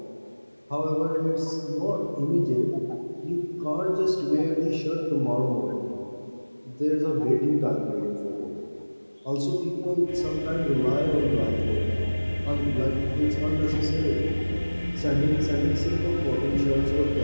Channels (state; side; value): inverted; both; correlation -1.00